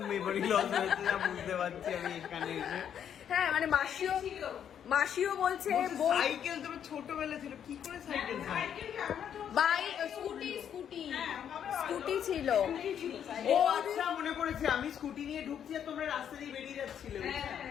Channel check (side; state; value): right; quieter; 8.9 dB